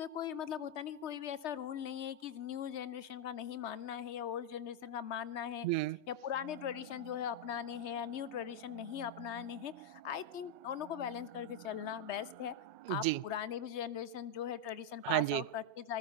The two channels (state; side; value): late; right; 3.2 ms